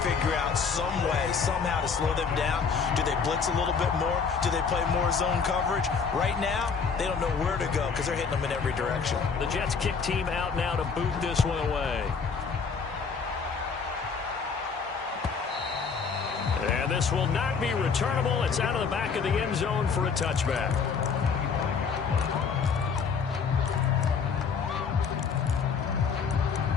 figure out some way, somehow to slow them down. Do they blitz a little bit more? Do they play more zone coverage? Right now, they don't know where to go because they're hitting them in every direction. The Jets kick team out now to boot this one away. And this will not be returnable. It's out of the back of the end zone for a touchback.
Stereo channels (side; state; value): right; quieter; 5.7 dB